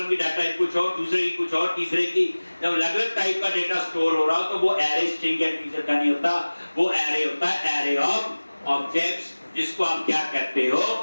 की डाटा कुछ और, दूसरे की कुछ और, तीसरे की, जब अलग अलग टाइप का डेटा स्टोर हो रहा हो, तो वो एरे स्ट्रिंग या इंटीजर का नहीं होता, वो एरे होता है, एरे ऑफ ऑब्जेक्ट्स, जिसको आप क्या कहते हो,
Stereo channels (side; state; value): both; inverted; correlation -1.00